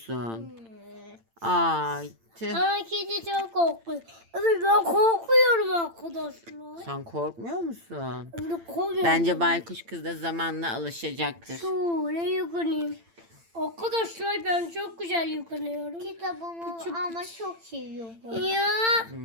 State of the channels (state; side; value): late; left; 8.8 ms